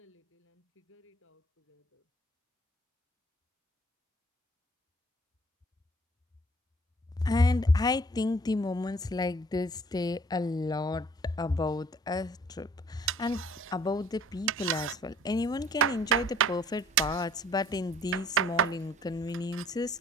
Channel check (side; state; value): both; normal; correlation 0.56